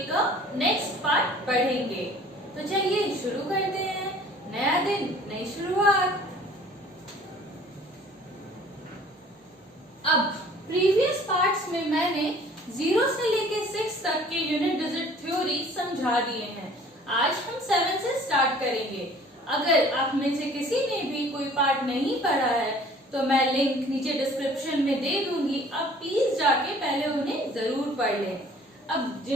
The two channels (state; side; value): normal; both; correlation 0.52